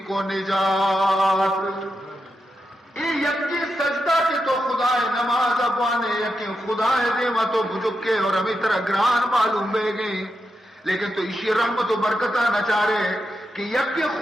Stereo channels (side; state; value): both; normal; correlation 0.86